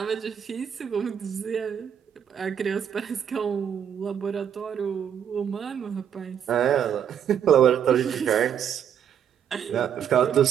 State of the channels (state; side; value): quieter; left; 8.8 dB